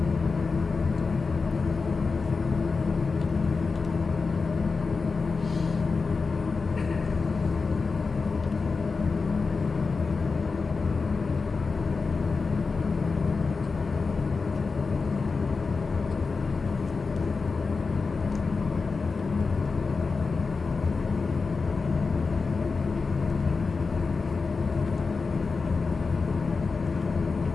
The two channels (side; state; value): right; quieter; 4.5 dB